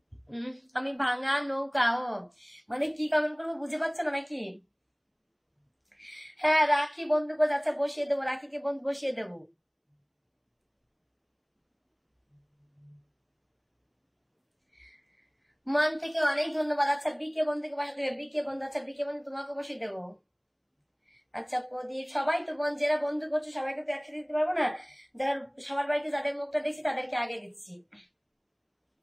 আমি ভাঙা নৌকা? ও মানে কি কমেন্ট করবো বুঝে পাচ্ছ না নাকি? হ্যাঁ, রাখি বন্ধু করে যাচ্ছে, বসিয়ে দেবো, রাখিকে বন্ধু বসিয়ে দেবো। মন থেকে অনেক ধন্যবাদ। আচ্ছা বিকে বন্ধুকে বসা দেবে, বিকে বন্ধু, আচ্ছা বিকে বন্ধু তোমাকে বসিয়ে দেবো। আচ্ছা প্রদীপ, সবাই তো যারা বন্ধু করছো সবাইকে তো একসাথে দিতে পারবো না, যারা সবার বাড়িতে যাদের মুখটা দেখছি তাদেরকে আগে দিচ্ছি।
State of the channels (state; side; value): identical; both; correlation 1.00